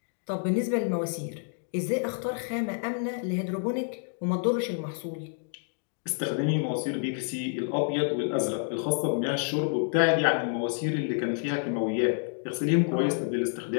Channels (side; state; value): right; silent; 59 dB below the other